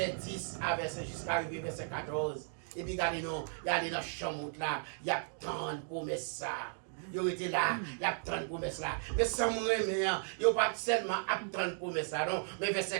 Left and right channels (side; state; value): left; silent; 54 dB below the other